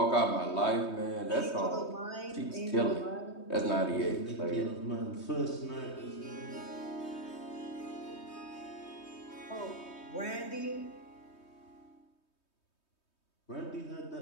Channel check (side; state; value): right; late; 3.2 ms